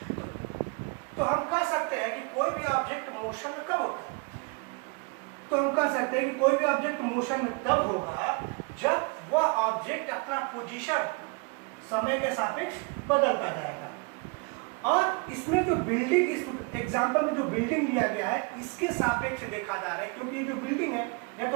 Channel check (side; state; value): left; quieter; 31.4 dB